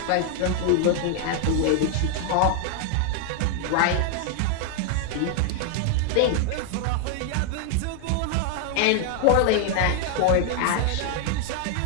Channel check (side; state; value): both; different; correlation 0.00